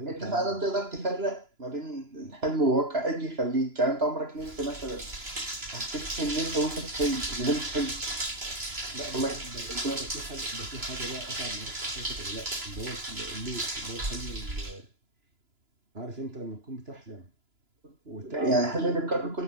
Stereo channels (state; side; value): late; left; 2.9 ms